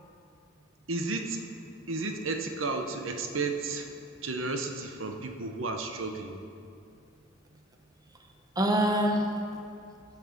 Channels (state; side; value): normal; both; correlation 0.41